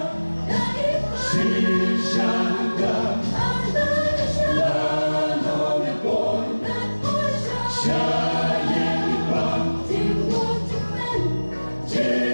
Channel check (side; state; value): both; inverted; correlation -1.00